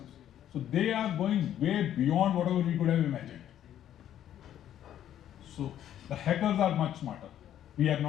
So they are going way beyond whatever we could have imagined. So the hackers are much smarter. We are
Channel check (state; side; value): quieter; right; 11.0 dB